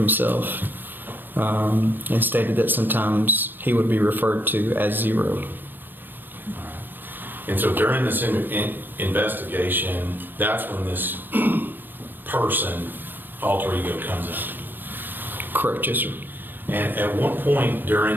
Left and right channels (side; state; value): left; late; 0.093 ms